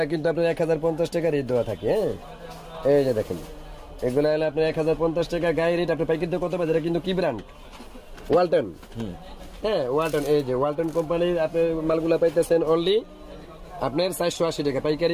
কিন্তু আপনার 1050 টাকা রেট দেওয়া থাকে। হ্যাঁ, এই যে দেখেন, এগুলা হলে আপনার 1050 টাকা গায়ে রেট। আপনি পাইকারিতে কত পাবেন? এটা কিন্তু কি ব্র্যান্ড? ওয়ালটন। হ্যাঁ, ওয়ালটন। এই যে ওয়ালটন কোম্পানির আপনি মালগুলা পাইতেছেন অনলি আপনার 480 টাকা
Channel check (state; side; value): identical; both; correlation 1.00